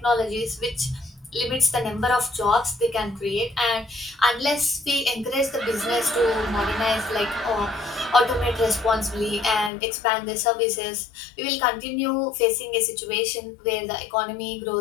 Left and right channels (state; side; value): drops out; right; at 9.7 s